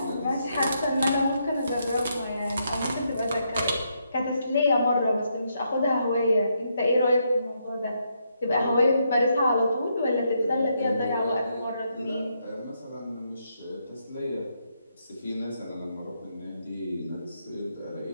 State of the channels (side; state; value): both; inverted; correlation -0.78